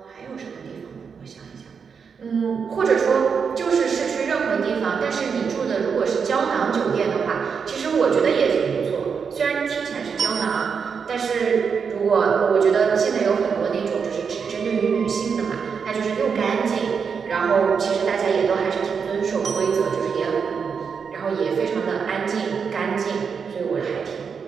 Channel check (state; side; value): quieter; left; 6.1 dB